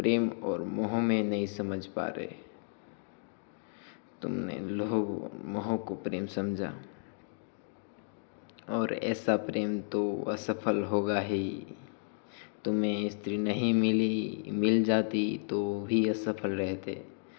और मोह में नहीं समझ पा रहे। तुमने लोभ और मोह को प्रेम समझा, और ऐसा प्रेम तो असफल होगा ही। तुम्हें स्त्री नहीं मिली, मिल जाती तो भी असफल रहते।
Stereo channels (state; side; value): silent; right; digital silence